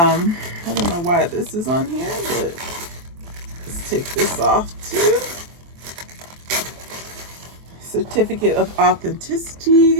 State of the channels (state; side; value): late; left; 23 ms